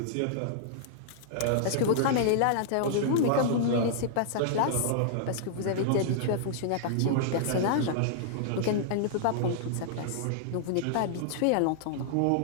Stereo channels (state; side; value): different; both; correlation -0.01